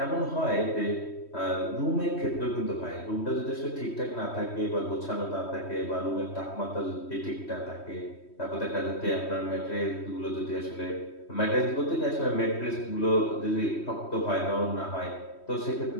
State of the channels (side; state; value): right; late; 3.1 ms